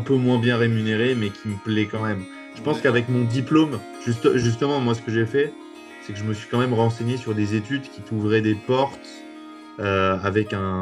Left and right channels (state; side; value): identical; both; correlation 1.00